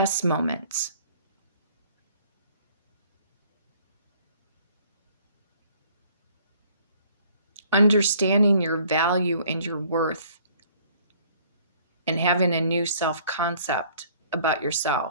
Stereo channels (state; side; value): inverted; both; correlation -0.58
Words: moments. Understanding your value and your worth, and having a new self-concept about